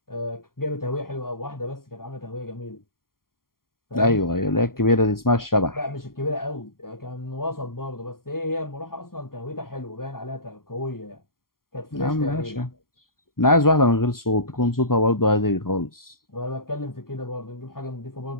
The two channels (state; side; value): late; right; 0.92 ms